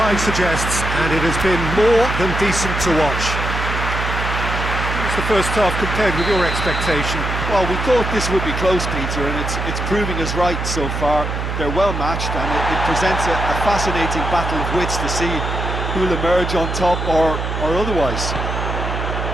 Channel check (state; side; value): noise; right; hum, 3 dB below the sound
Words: suggests, and it has been more than decent to watch. What's the first half compared with your expectation? Well, we thought this would be close, Peter, and it's proving us right so far. They're well matched, and it presents a fascinating battle of wits to see who'll emerge on top or otherwise.